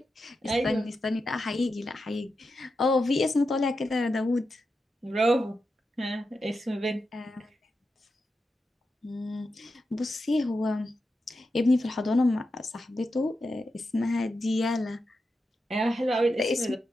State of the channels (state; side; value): normal; both; correlation 0.89